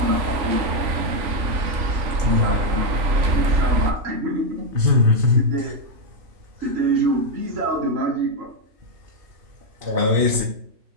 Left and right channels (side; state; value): left; late; 3.5 ms